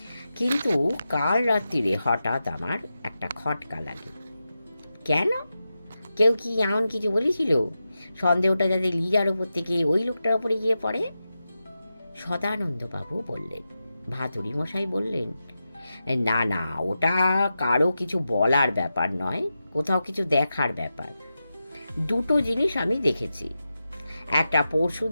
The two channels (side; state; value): both; inverted; correlation -0.91